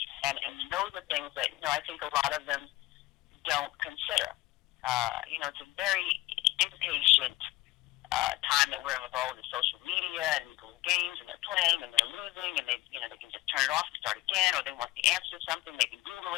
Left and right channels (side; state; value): right; quieter; 18.6 dB